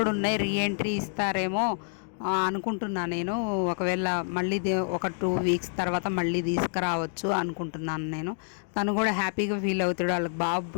ఉన్నాయి, రీఎంట్రీ ఇస్తారేమో అనుకుంటున్నాను నేను. ఒకవేళ మళ్ళీ ఒక 2 వీక్స్ తర్వాత మళ్ళీ తీసుకురావచ్చు అనుకుంటున్నాను నేను. తను కూడా హ్యాపీగా ఫీల్ అవుతాడు, వాళ్ళకి బాబు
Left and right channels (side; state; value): right; silent; 59 dB below the other